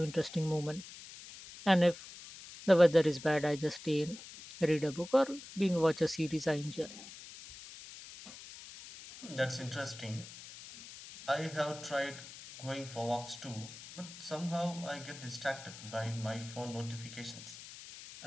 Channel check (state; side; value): noise; left; hiss, 15 dB below the sound